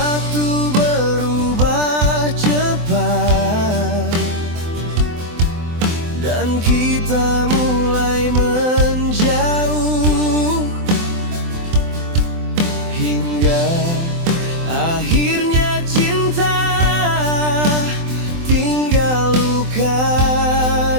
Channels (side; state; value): left; late; 24 ms